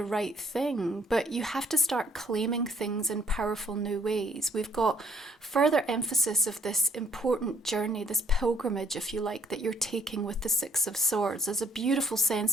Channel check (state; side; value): normal; both; correlation 0.64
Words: right thing? But you have to start claiming things in powerful new ways. We've got further emphasis of this important journey, this pilgrimage, if you like, that you're taking with the Six of Swords. There's a beautiful